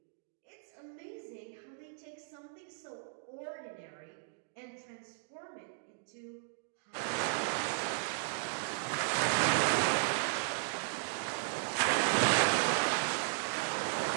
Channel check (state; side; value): silent; left; digital silence